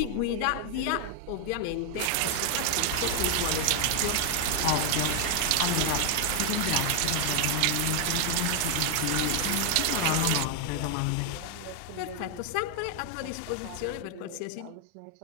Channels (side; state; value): both; different; correlation 0.00